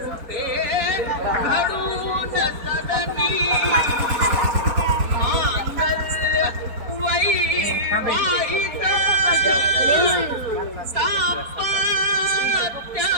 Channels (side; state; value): left; late; 4.3 ms